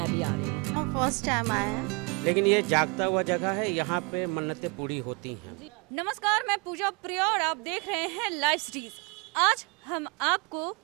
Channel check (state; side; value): quieter; left; 30.7 dB